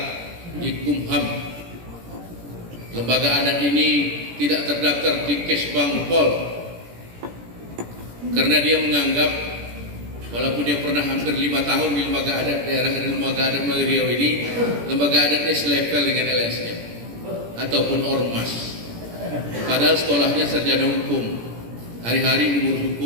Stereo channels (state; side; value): late; left; 17 ms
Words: di Kumham. Lembaga adat ini tidak terdaftar di Kesbang Pol, karena dia menganggap walaupun dia pernah hampir 5 tahun di Lembaga Adat Daerah dan Lembaga Adat Melayu Riau ini, Lembaga Adatnya selevel dengan LSM ataupun Ormas. Padahal sekolahnya sarjana hukum, hari-hari ngurus